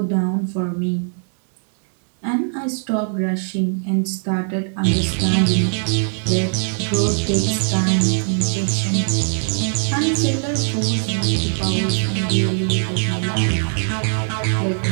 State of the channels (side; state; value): left; silent; digital silence